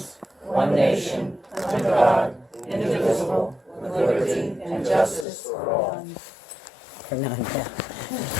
one nation, under God, indivisible, with liberty and justice for all. For none, yeah.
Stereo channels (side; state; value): right; drops out; at 5.2 s